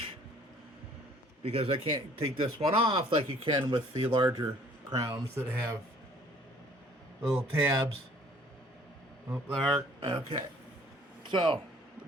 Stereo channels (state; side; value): normal; both; correlation 0.56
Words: because I can't take this one off like you can with the larger crowns that have little tabs. Oh, there. Okay. So